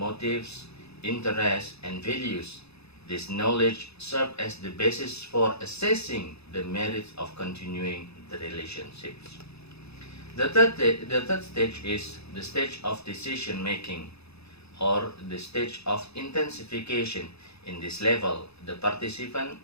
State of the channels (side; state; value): right; late; 0.79 ms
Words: interests, and values. This knowledge serves as the basis for assessing the merits of continuing the relationships. The third stage is the stage of decision making, or the stage of intensification. In this level, the participant